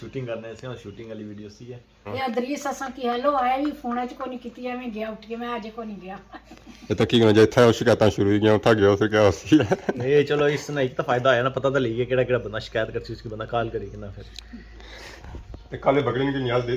करने से शूटिंग वाली वीडियो सी है ये इदरीस असा की हेलो आया भी फोन च को नहीं कीती मैं गया उठ के मैं आज को नहीं गया ये तो की करना जे था शिकायतां शुरू ही गया उठा गया फिर क्या होसी है ये चलो इससे एक तो फायदा आया ना पता तो लगी केड़ा बंदा शिकायत करसी उसकी बंदा कॉल करी कि ना फिर ते काले बकरीन की न्याज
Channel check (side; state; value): both; identical; correlation 1.00